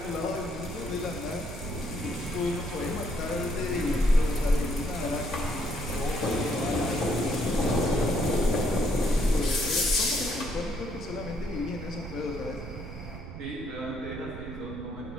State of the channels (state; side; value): noise; right; rumble, 11 dB below the sound